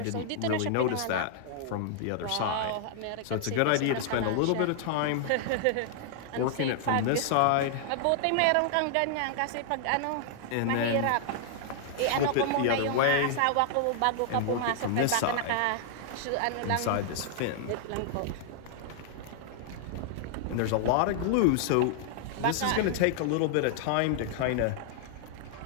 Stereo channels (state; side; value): different; both; correlation -0.01